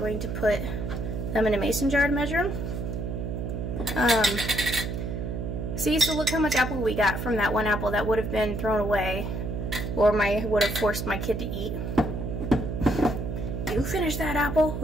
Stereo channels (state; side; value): noise; right; hum, 4 dB below the sound